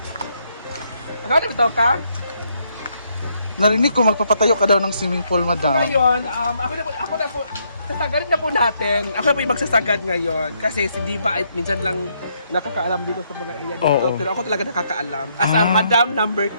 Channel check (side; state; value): both; inverted; correlation -0.74